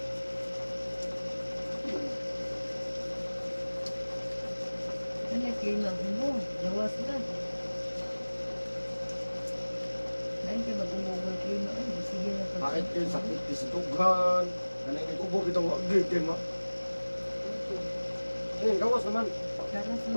Ano yung klima mo? Gawas na. Lain ka mag-umubo yung klima. Ay, sige na pa. Kahit yun, sakit di sa tughan. Ano yung ubo kitang wagig kayo ma. Ayun, gawas naman. Karas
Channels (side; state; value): both; inverted; correlation -1.00